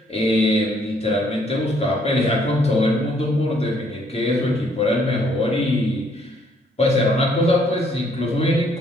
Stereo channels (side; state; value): both; normal; correlation 0.66